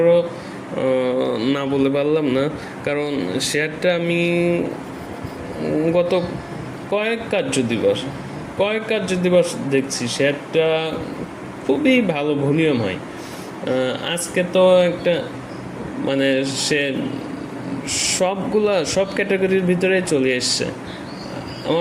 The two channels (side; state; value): both; identical; correlation 1.00